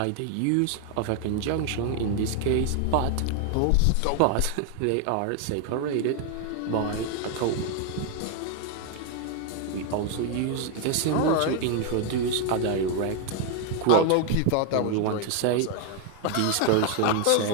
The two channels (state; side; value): different; both; correlation 0.01